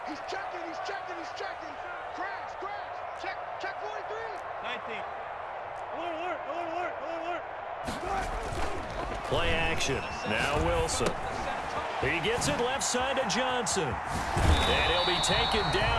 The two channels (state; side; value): identical; both; correlation 1.00